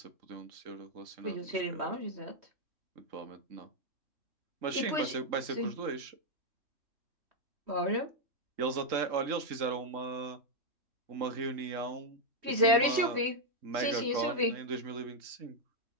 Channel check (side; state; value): left; late; 3.1 ms